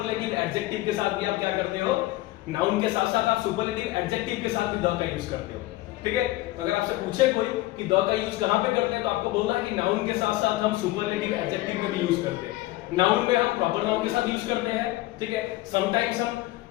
एडजेक्टिव के साथ भी आप क्या करते हो, नाउन के साथ साथ आप सुपरलेटिव एडजेक्टिव के साथ भी द का यूज करते हो, ठीक है। तो अगर आपसे पूछे कोई कि द का यूज कहां पे करते हैं तो आपको बोलना है कि नाउन के साथ साथ हम सुपरलेटिव एडजेक्टिव में भी यूज करते हैं। नाउन में हम प्रॉपर नाउन के साथ यूज करते हैं, ठीक है। समटाइम्स हम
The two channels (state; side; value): quieter; right; 17.8 dB